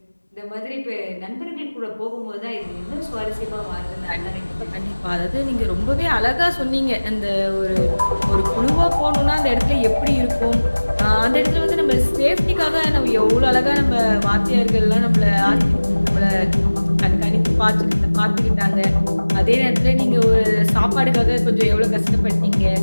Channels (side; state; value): both; inverted; correlation -1.00